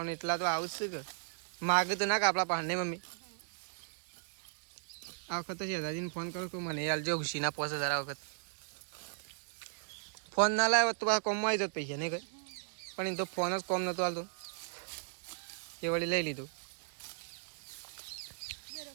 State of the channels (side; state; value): left; silent; digital silence